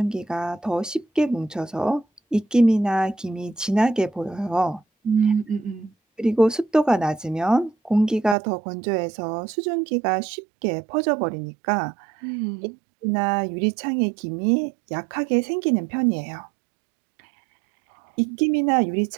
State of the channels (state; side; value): drops out; left; at 8.3 s